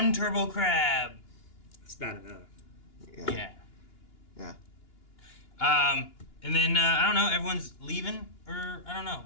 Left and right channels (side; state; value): right; late; 2.9 ms